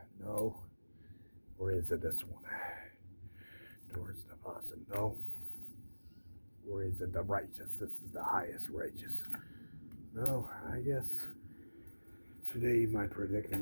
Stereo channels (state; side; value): inverted; both; correlation -1.00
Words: No. Or is it this one? Towards the faucet? No. Or is it the righteous? This is the highest righteous. No, I guess Today my